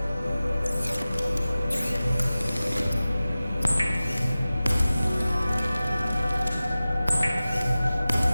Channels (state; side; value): inverted; both; correlation -0.96